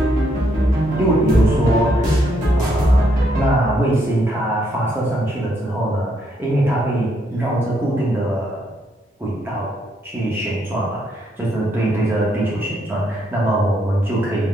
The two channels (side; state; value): both; normal; correlation 0.74